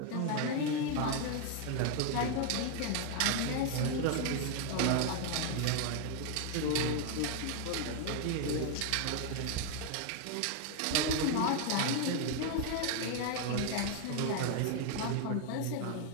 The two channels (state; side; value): different; both; correlation 0.01